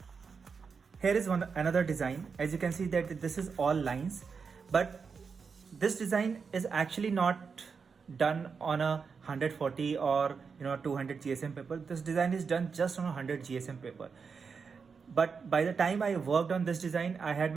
Here is another design. As you can see that this is all lines, but this design is actually not done on a 140 or 200 GSM paper. This design is done just on a 100 GSM paper. But by the time I worked on this design, I had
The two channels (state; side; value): quieter; left; 5.5 dB